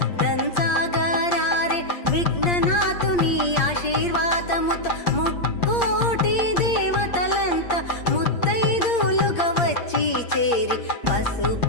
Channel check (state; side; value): late; right; 8.6 ms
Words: దంచాగారే విఘ్ననాథుని ఆశీర్వాదముతో ముక్కోటి దేవతలంతా ముత్తైదులుగా వచ్చి చేరి